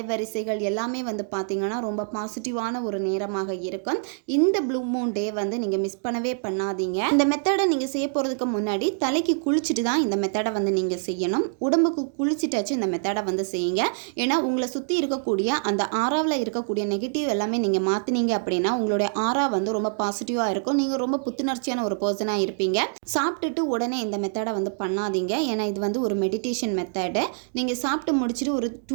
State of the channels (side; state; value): left; silent; digital silence